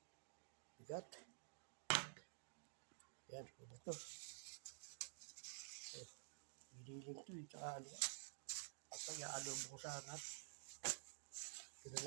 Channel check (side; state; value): left; silent; digital silence